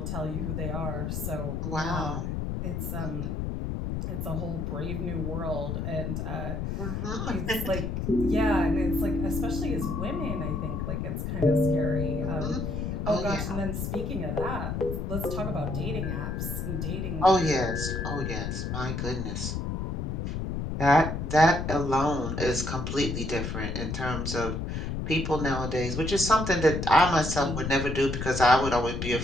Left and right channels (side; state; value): left; noise; rumble, 3 dB below the sound